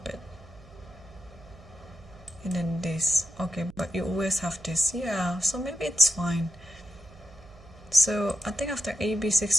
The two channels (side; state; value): right; noise; hum, 22 dB below the sound